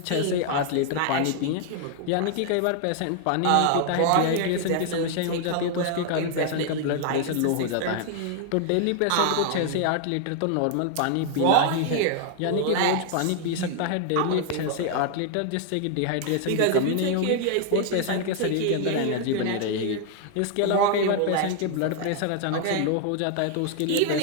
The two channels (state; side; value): different; both; correlation 0.00